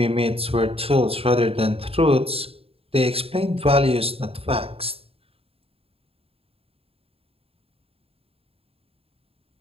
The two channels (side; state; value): left; late; 0.28 ms